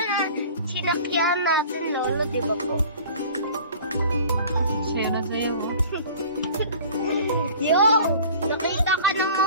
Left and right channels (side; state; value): both; inverted; correlation -0.45